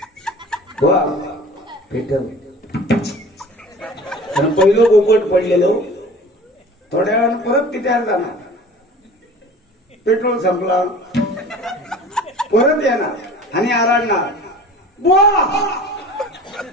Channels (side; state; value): both; normal; correlation 0.42